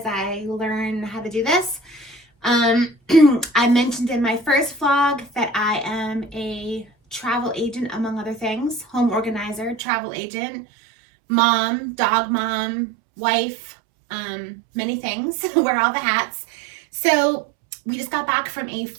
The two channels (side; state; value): left; drops out; at 9.8 s